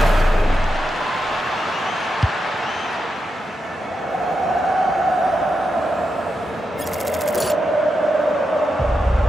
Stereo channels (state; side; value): normal; both; correlation 0.86